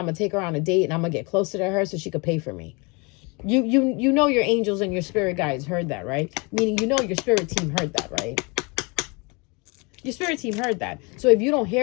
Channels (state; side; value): quieter; right; 29.2 dB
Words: going to take her on a date, and I'm going to get closer to her so she could pay for me. You know your angels and your spirit guides heard that, right? Meaning, you know your spirit team heard that, right? Your spirit team heard that. So if you don't